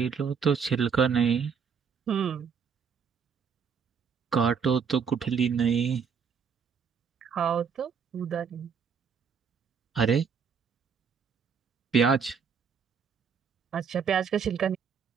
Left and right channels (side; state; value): left; quieter; 6.6 dB